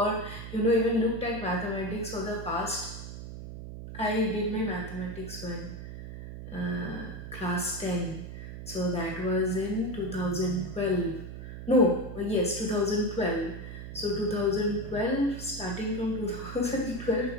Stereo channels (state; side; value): noise; right; hum, 10 dB below the sound